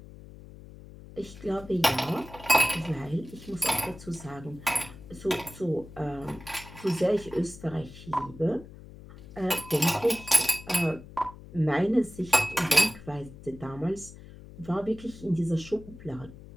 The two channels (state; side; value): noise; left; hum, 17 dB below the sound